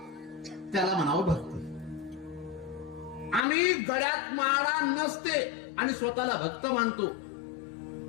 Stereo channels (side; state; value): right; drops out; at 3.5 s